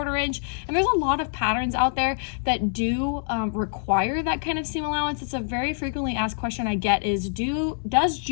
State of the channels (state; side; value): silent; right; digital silence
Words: inch. And there's a lot of patterns out there that do require that kind of seam allowance. It's a very frequently asked question I get is, does